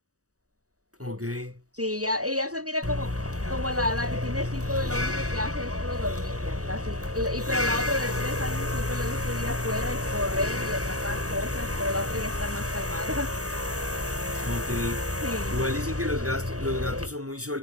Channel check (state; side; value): late; left; 0.66 ms